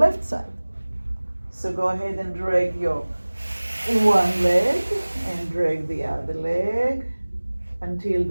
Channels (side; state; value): both; inverted; correlation -1.00